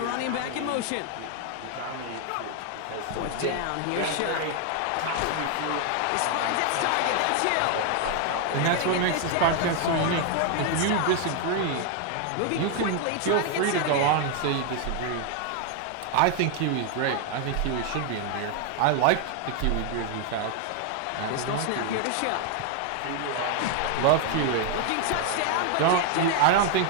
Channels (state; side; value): different; both; correlation 0.00